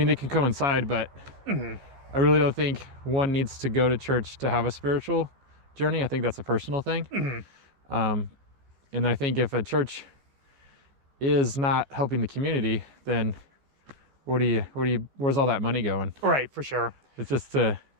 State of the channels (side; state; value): left; late; 14 ms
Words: they can coincide, but I really don't think one needs to go to church to have a spiritual journey. I think that's a personal thing. And I think if a church is not helping the community, then where's all that money going? Right, for sure. It's just to